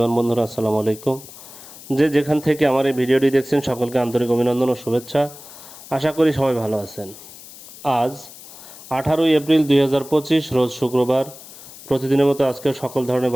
বন্ধুরা, আসসালামু আলাইকুম। যে যেখান থেকে আমার এই ভিডিওটি দেখছেন সকলকে আন্তরিক অভিনন্দন ও শুভেচ্ছা। আশা করি সবাই ভালো আছেন। আজ 18 এপ্রিল 2025, রোজ শুক্রবার। প্রতিদিনের মতো আজকে সকল ধরনের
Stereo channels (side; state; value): left; noise; hiss, 17 dB below the sound